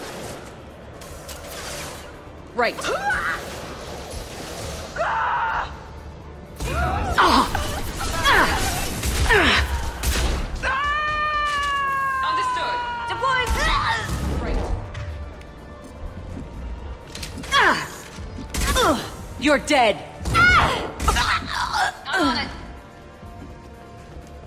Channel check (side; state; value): both; identical; correlation 1.00